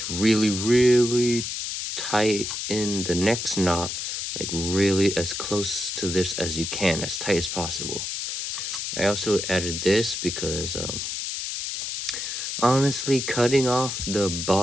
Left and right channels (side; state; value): left; noise; hiss, 4 dB below the sound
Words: really tighten the next knot, like really as close to this as you can, as tight as possible. I also added this because honestly, cutting off the